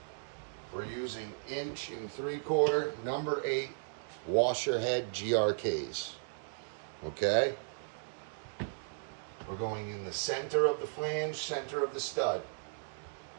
We're using 1 3/4 number 8 washer head GRKs. Okay? We're going in the center of the flange, center of the stud.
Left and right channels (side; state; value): left; silent; digital silence